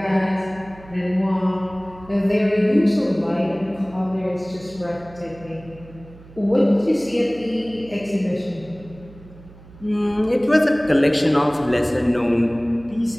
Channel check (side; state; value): right; noise; hum, 21 dB below the sound